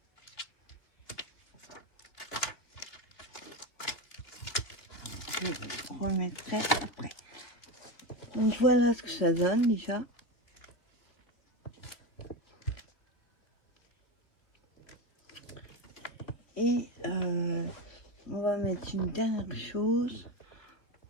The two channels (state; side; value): late; right; 2.9 ms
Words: Je remettrai après. Donc voilà ce que ça donne déjà. Et on va mettre une dernière chose.